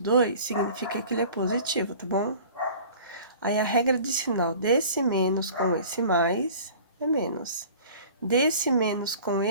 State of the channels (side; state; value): both; inverted; correlation -0.45